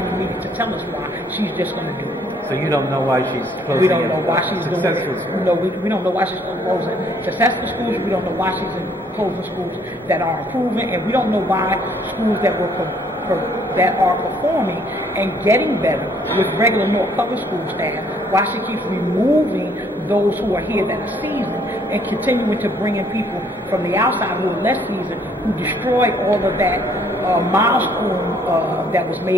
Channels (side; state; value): both; normal; correlation 0.64